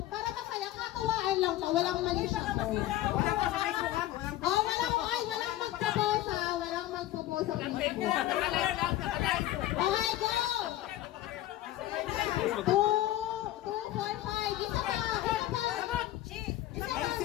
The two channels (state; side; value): quieter; right; 14.7 dB